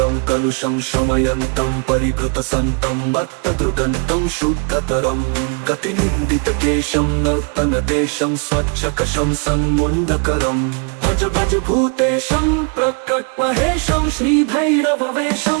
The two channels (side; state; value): left; quieter; 38.1 dB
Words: कलुषं शमयन्तं परिभृतसन्तं मत्तदृगन्तं शुद्धतरं गतिनिन्दितकेशं नर्तनदेशं स्वच्छकशं सन्मुण्डकरं भज भज भूतेशं प्रकटमहेशं श्रीभैरववेशं